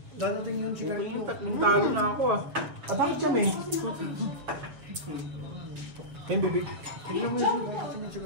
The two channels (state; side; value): late; left; 7.3 ms